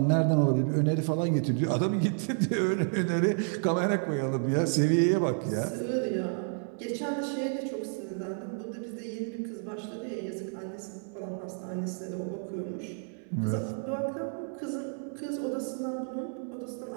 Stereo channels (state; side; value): silent; left; 57 dB below the other